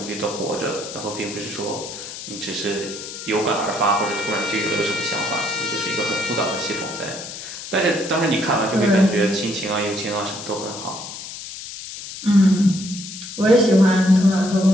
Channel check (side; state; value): left; noise; hiss, 10 dB below the sound